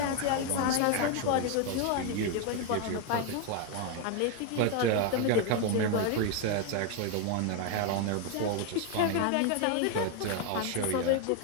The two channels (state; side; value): different; both; correlation 0.01